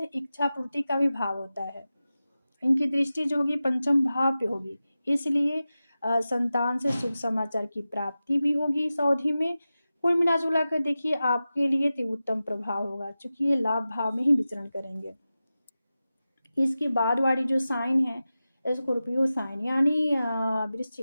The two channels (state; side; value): inverted; both; correlation -0.94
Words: इच्छा पूर्ति का भी भाव होता है। इनकी दृष्टि जो होगी पंचम भाव पे होगी। इसलिए संतान से शुभ समाचार की प्राप्ति भी होगी इस अवधि में। कुल मिला-जुला कर देखिए आपके लिए तो उत्तम प्रभाव होगा क्योंकि ये लाभ भाव में ही विचरण करेंगे। इसके बाद वाली जो साइन है स्कॉर्पियो साइन यानी